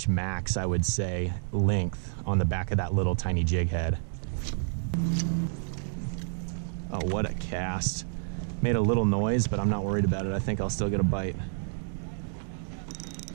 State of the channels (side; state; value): left; silent; digital silence